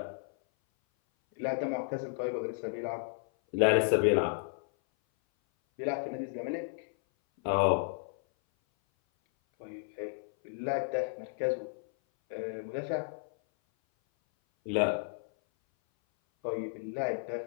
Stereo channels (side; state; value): right; silent; 56 dB below the other